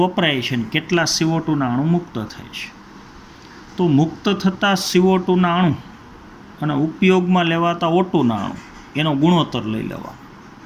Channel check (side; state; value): both; identical; correlation 1.00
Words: વપરાય છે ને કેટલા CO2ના અણુ મુક્ત થાય છે. તો મુક્ત થતા CO2ના અણુ અને ઉપયોગમાં લેવાતા O2ના અણુ, એનો ગુણોત્તર લઈ લેવા,